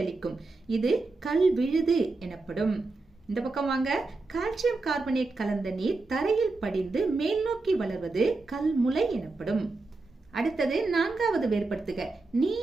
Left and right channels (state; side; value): quieter; left; 3.5 dB